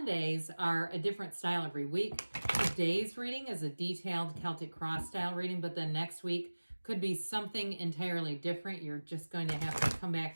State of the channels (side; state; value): both; inverted; correlation -1.00